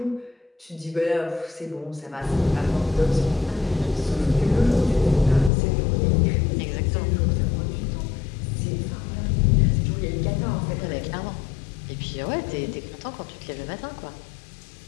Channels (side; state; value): right; drops out; at 5.5 s